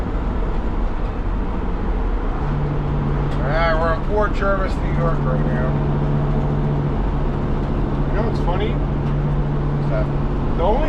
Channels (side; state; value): both; identical; correlation 1.00